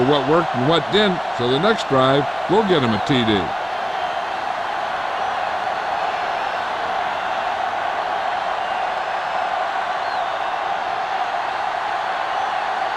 what worked and what didn't, so the next drive will get him a TD.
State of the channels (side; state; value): both; identical; correlation 1.00